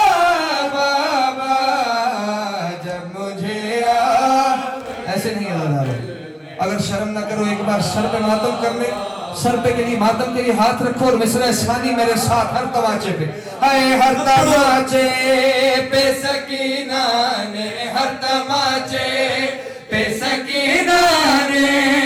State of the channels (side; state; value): both; identical; correlation 1.00